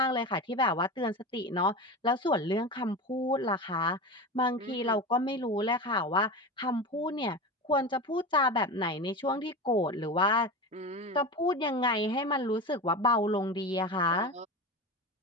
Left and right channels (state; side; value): normal; both; correlation 0.25